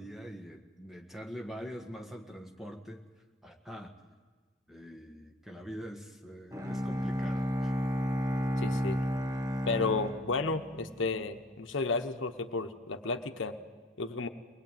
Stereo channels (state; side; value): normal; both; correlation 0.47